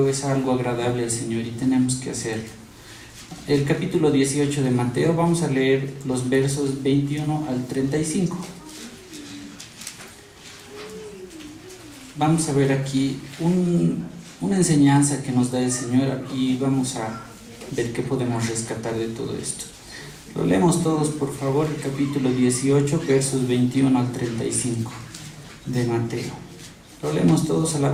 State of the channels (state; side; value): identical; both; correlation 1.00